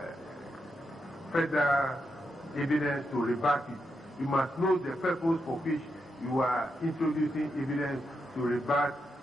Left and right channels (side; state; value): both; normal; correlation 0.84